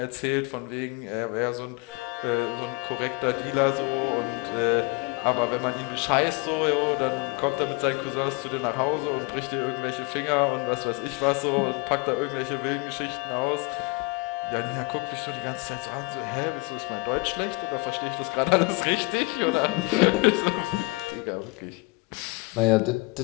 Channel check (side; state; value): right; quieter; 26.1 dB